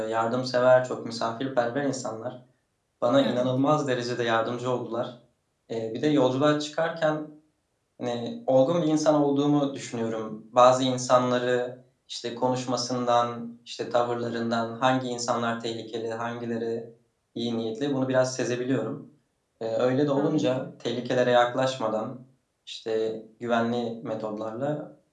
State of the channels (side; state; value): both; identical; correlation 1.00